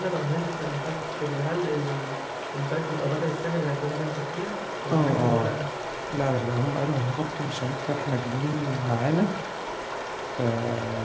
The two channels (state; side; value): identical; both; correlation 1.00